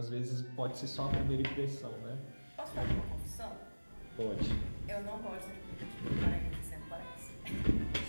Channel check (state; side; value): inverted; both; correlation -1.00